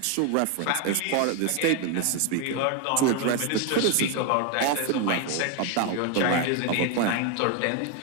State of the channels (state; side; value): different; both; correlation 0.01